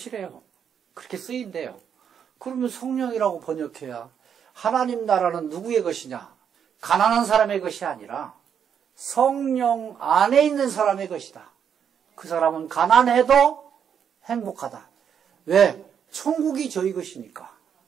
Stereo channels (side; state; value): left; quieter; 7.9 dB